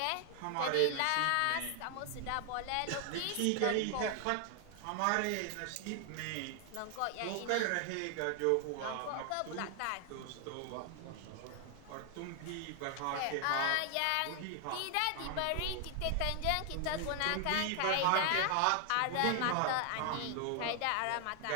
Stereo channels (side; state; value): both; different; correlation 0.00